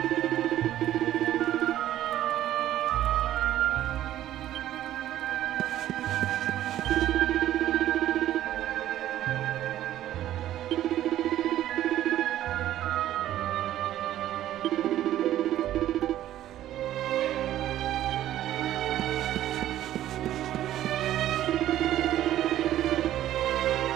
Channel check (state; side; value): quieter; left; 12.8 dB